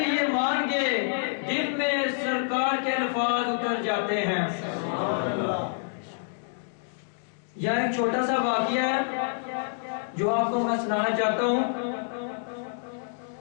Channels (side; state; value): right; silent; digital silence